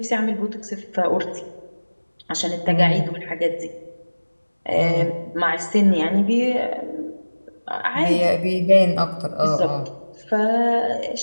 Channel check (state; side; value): inverted; both; correlation -1.00